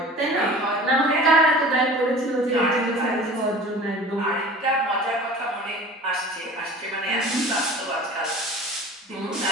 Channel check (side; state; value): both; normal; correlation 0.41